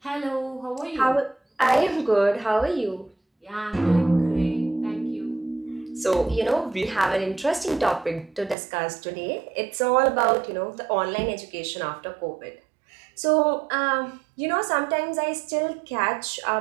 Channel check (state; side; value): drops out; left; at 8.6 s